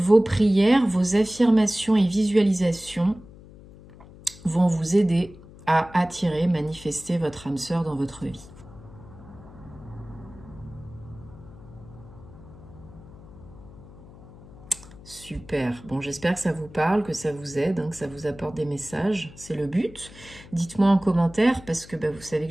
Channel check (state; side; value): noise; left; hum, 19 dB below the sound